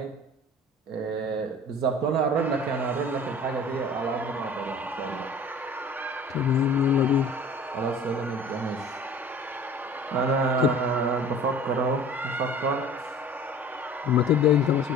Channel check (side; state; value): both; normal; correlation 0.45